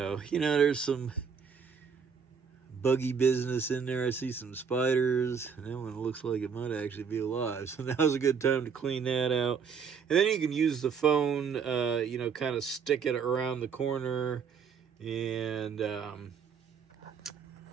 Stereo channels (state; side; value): quieter; left; 6.4 dB